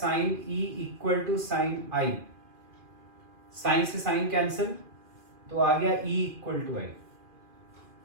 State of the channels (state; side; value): late; left; 2.4 ms